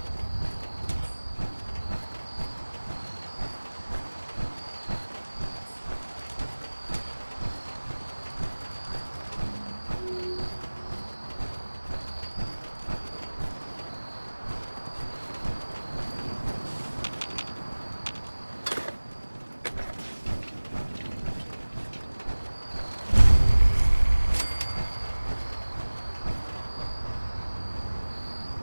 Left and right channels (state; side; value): inverted; both; correlation -1.00